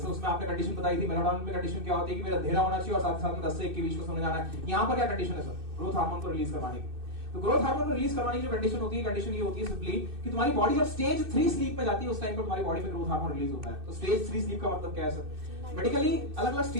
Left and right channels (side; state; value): left; late; 2.6 ms